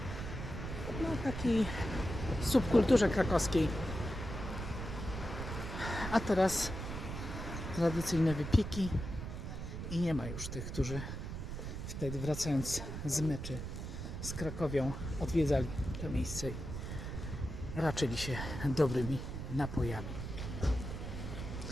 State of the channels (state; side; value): noise; right; rumble, 6 dB below the sound